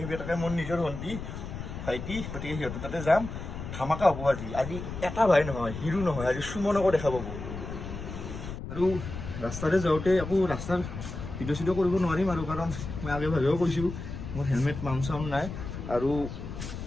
সেইবিলাকে মোৰ নিজৰ ভণ্টি ভাইটি গতিকে সিহঁতৰ তাতে যাম ধামাকা হ'ব আজি এটা ভাই নহয় হিৰো নহয় আজি সুমনকো দেখা পাব আৰু ৰাস্তাতে যাওঁতে আকৌ ৰাস্তাৰ ভিডিঅ' কৰিব নোৱাৰিম আৰু কাৰণ মই আগে ভাগেও কৈছোঁ মোৰ হেলমেট মাউণ্ট চাউণ্ড নাই আৰু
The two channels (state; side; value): noise; left; rumble, 8 dB below the sound